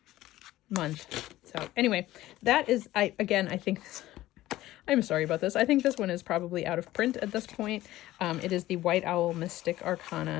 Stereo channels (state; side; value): quieter; right; 15.8 dB